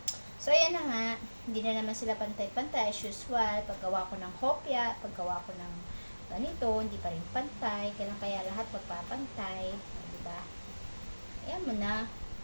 So, ayan na nga. Hindi na naman sila pantay-pantay as usual. Paggawa ko ng hopya, paggawa ko ng ganito, hindi pa rin pantay. Kaya lahat magpapantay. Diba? Ayan mo na.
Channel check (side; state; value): both; inverted; correlation -1.00